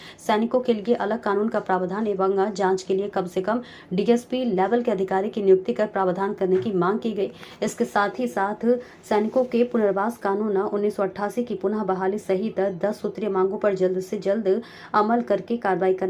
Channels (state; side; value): identical; both; correlation 1.00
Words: सैनिकों के लिए अलग कानून का प्रावधान एवं जांच के लिए कम से कम डीएसपी लेवल के अधिकारी की नियुक्ति कर प्रावधान करने की मांग की गई। इसके साथ ही साथ सैनिकों के पुनर्वास कानून 1988 की पुनः बहाली सहित 10 सूत्रीय मांगों पर जल्द से जल्द अमल करके कार्रवाई